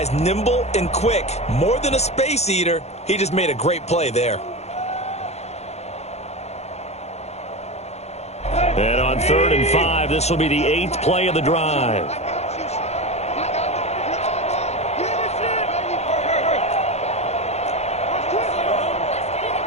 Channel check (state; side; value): late; right; 0.31 ms